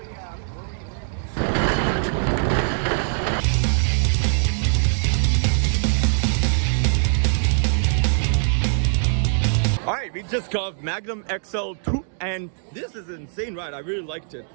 Alright, we just got Magnum XL-200 and this is an insane ride. I really liked it.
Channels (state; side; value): silent; left; digital silence